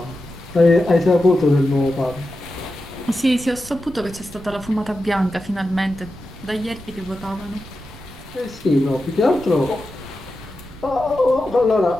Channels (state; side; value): noise; right; rumble, 18 dB below the sound